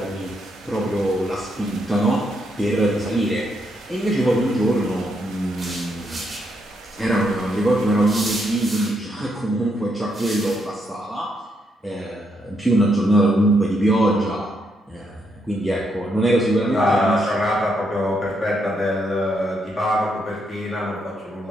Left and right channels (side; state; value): both; normal; correlation 0.77